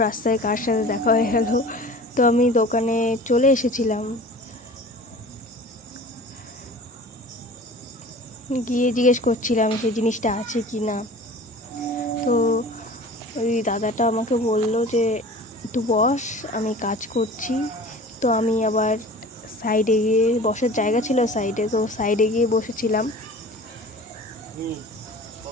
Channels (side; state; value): both; normal; correlation 0.41